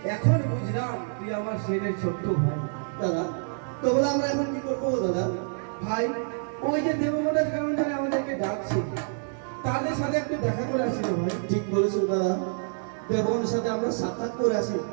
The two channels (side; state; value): left; silent; digital silence